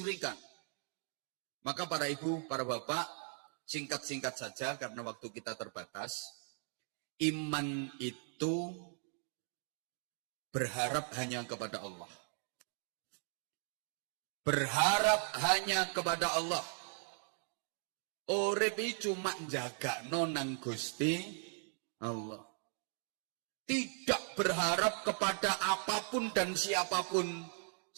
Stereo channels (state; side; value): silent; left; 52 dB below the other